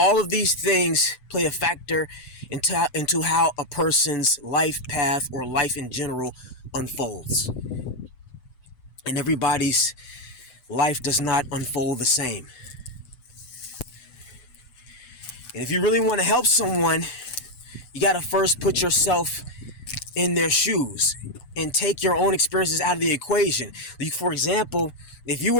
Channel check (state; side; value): late; right; 8.0 ms